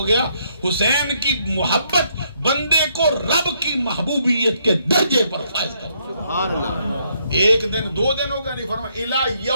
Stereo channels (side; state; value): both; inverted; correlation -0.73